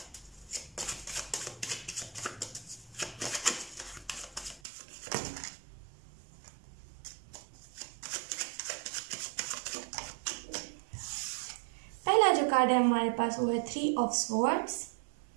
जो कार्ड है हमारे पास वो है 3 of swords,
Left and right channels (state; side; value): drops out; left; at 4.6 s